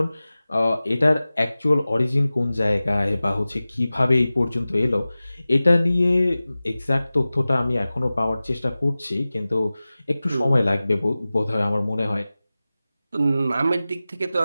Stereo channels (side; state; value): both; inverted; correlation -0.97